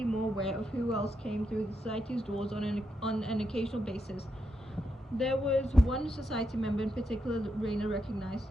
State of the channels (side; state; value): both; normal; correlation 0.83